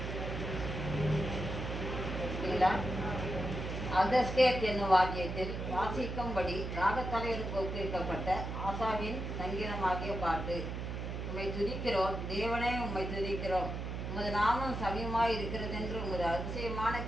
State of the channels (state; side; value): noise; right; hum, 4 dB below the sound